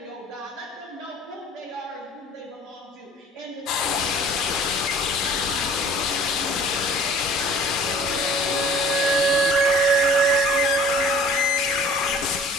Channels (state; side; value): normal; both; correlation 0.49